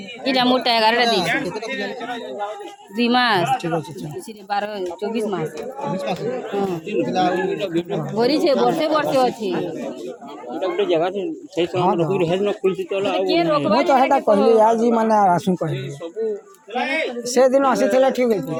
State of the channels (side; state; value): both; identical; correlation 1.00